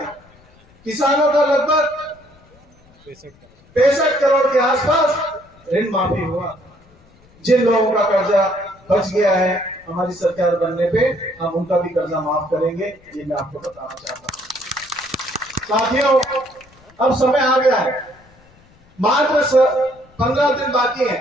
किसानों का लगभग 65 करोड़ के आसपास ऋण माफी हुआ। जिन लोगों का कर्जा बच गया है, हमारी सरकार बनने पे हम उनका भी कर्जा माफ करेंगे, ये मैं आपको बताना चाहता हूँ। साथियों, अब समय आ गया है, मात्र 15 दिन बाकी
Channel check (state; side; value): noise; left; rumble, 29 dB below the sound